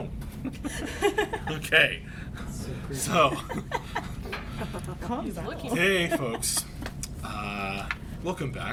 Okay, so, hey folks, welcome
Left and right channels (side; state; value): both; identical; correlation 1.00